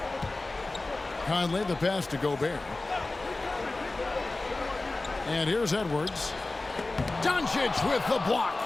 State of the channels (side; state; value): right; quieter; 3.1 dB